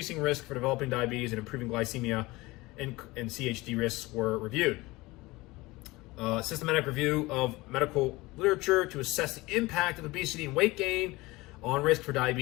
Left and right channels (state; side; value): quieter; right; 21.2 dB